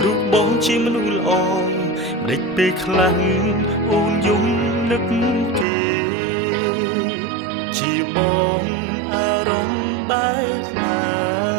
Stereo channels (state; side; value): drops out; left; at 5.7 s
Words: រូបបងជាមនុស្សល្អម្ដេចពេលខ្លាំងអូនយំនឹកគេជាបងអារម្មណ៍បែបណា